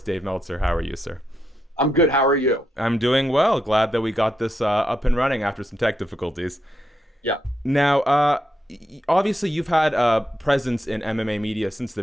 Dave Meltzer. How are you, sir? I'm good. How are you? I'm doing well. Glad that we got this up and running after some tech difficulties. Yeah. Now, obviously, you've had a presence in MMA media since the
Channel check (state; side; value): normal; both; correlation 0.83